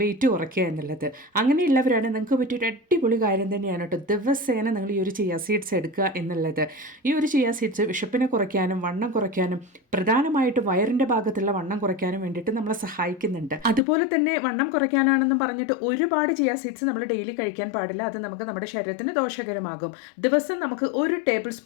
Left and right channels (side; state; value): right; drops out; at 13.8 s